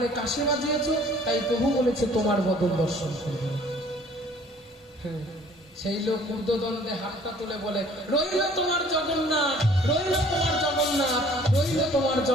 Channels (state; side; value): normal; both; correlation 0.54